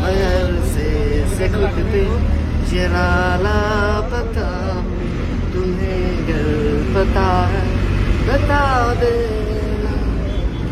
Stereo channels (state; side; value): identical; both; correlation 1.00